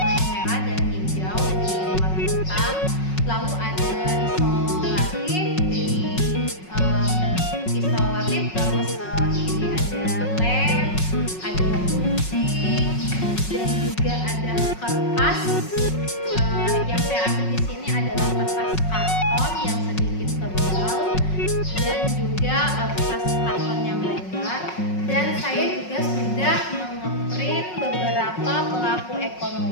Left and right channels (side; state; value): right; late; 5.4 ms